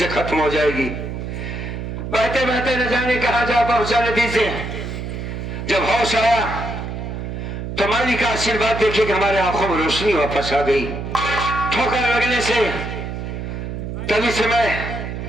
खत्म हो जाएगी। बहते बहते न जाने कहा जा पहुंचा नदी से। जब होश आया तो मालिक का आशीर्वाद देखे कि हमारे आंखों में रोशनी वापस आ गई। ठोकर लगने से तभी से मैं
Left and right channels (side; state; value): right; noise; hum, 6 dB below the sound